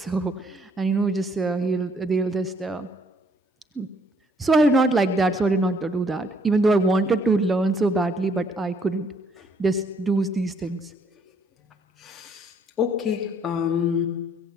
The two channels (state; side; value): normal; both; correlation 0.65